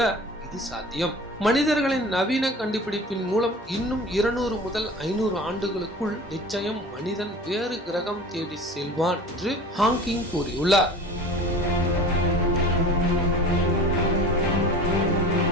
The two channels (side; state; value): both; normal; correlation 0.40